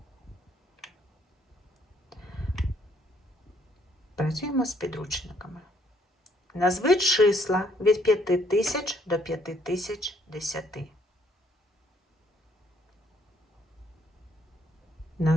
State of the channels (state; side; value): normal; both; correlation 0.67